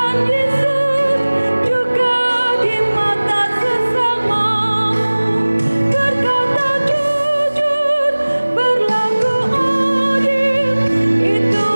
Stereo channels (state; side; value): inverted; both; correlation -1.00